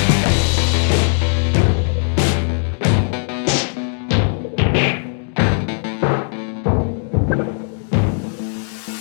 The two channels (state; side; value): silent; right; 67 dB below the other